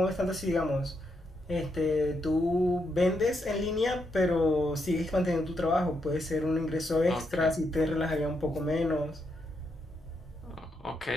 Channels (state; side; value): normal; both; correlation 0.80